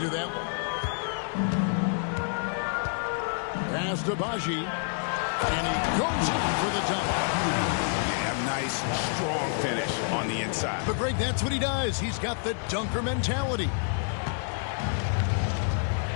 that one. Pass to Baji, and he goes in for the dunk. Yeah, nice, strong finish on the inside. But Greg, that's what he does. He's got the dunker mentality.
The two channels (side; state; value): right; silent; 59 dB below the other